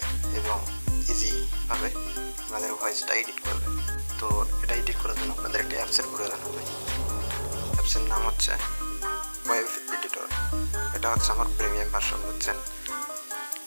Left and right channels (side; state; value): both; inverted; correlation -1.00